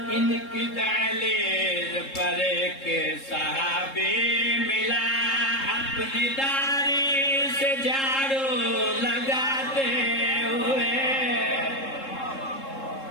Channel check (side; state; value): right; late; 3.7 ms